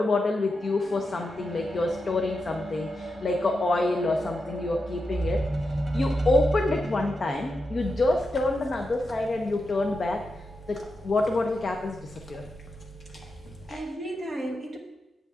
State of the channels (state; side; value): normal; both; correlation 0.88